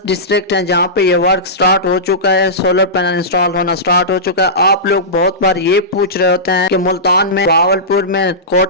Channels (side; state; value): both; normal; correlation -0.17